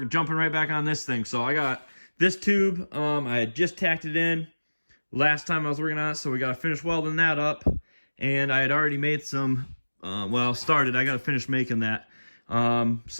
jumping right back on this thing. So I got This tube, I had just tacked it in last time I was working on it, so we got to finish welding that up. And I had already made some, I got to finish making that.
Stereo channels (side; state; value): both; inverted; correlation -1.00